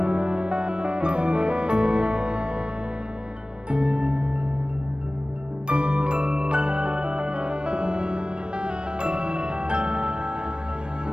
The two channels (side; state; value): left; late; 0.053 ms